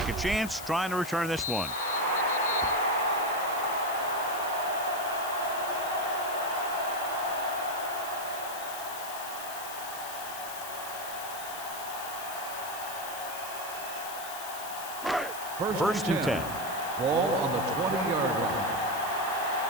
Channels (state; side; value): noise; left; hiss, 10 dB below the sound